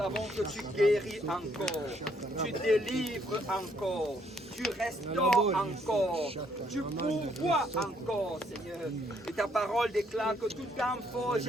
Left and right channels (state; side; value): normal; both; correlation 0.69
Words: que tu guéris encore, tu délivres encore, tu restaures encore, tu pourvois encore Seigneur. Et ta parole déclare que toute arme